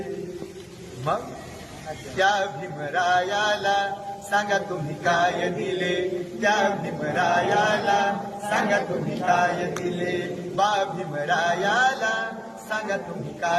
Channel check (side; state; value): both; identical; correlation 1.00